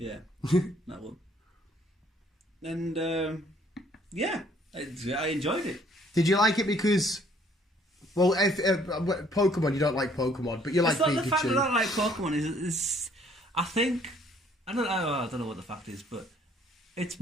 that one. And yeah, I enjoyed it. Did you like it because, well, if Pokemon, you don't like Pokemon, but you like Pikachu. It's not the fact that I don't like Pokemon. Is I think I don't know what the fact is, but it's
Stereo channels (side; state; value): both; normal; correlation 0.62